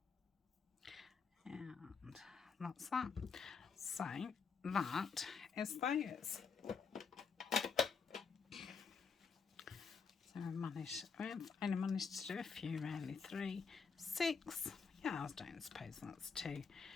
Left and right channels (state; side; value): quieter; right; 5.5 dB